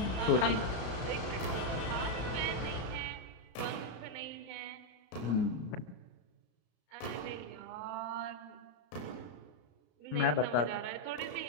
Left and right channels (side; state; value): right; late; 33 ms